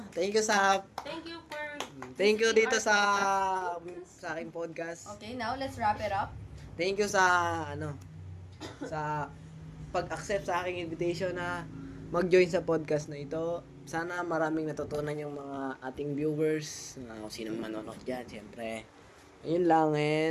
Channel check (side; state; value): both; identical; correlation 1.00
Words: Thank you Thank you dito sa aking podcast. Okay, now let's wrap it up. Thank you sa sa pag-accept sa aking invitation na mag-join sa podcast na ito. Sana maraming natutunan yung mga ating viewers, kung sinong manonood dyan, siyempre. Ayun lang,